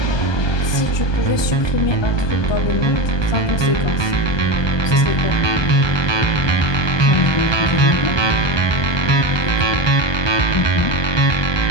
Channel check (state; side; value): late; right; 1.2 ms